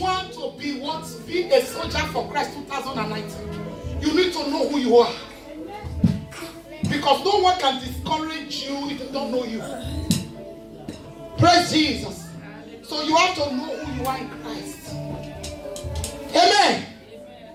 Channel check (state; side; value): identical; both; correlation 1.00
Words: to be a soldier for Christ 2019, you need to know who you are. Because no one can discourage you if they don't know you. Praise Jesus. So you have to know who you are in Christ. Amen.